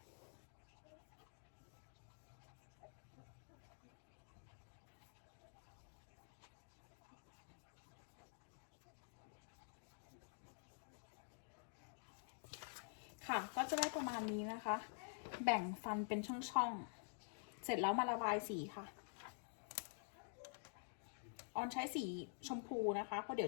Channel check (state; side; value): silent; right; digital silence